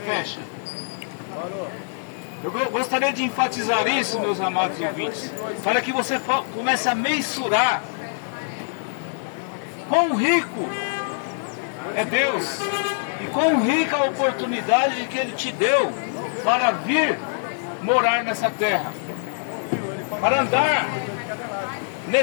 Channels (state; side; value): silent; right; digital silence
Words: Eu gostaria de enfatizar isso, meus amados ouvintes, para que você comece a mensurar quão rico é Deus e quão rica a oportunidade que Ele te deu para vir morar nessa terra, para andar